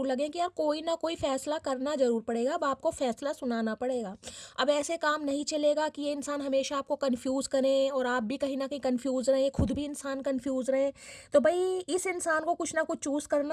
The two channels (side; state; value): both; identical; correlation 1.00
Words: लगे कि यार कोई ना कोई फैसला करना जरूर पड़ेगा। अब आपको फैसला सुनाना पड़ेगा। अब ऐसे काम नहीं चलेगा कि ये इंसान हमेशा आपको कंफ्यूज करें और आप भी कहीं ना कहीं कंफ्यूज रहें, खुद भी इंसान कंफ्यूज रहे। तो भाई इस इंसान को कुछ ना कुछ चूज